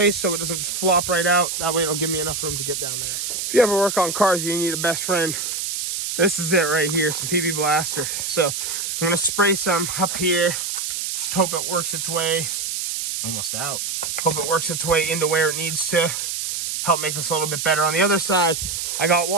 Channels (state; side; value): noise; right; hiss, 3 dB below the sound